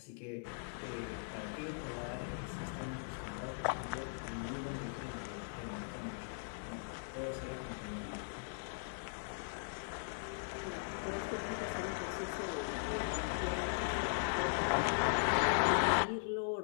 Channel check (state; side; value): silent; right; 52 dB below the other